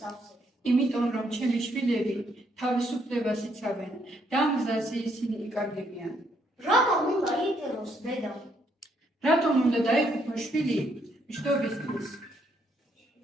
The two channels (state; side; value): normal; both; correlation 0.72